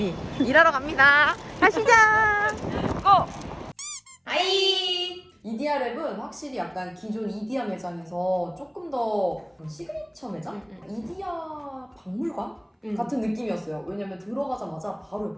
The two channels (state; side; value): identical; both; correlation 1.00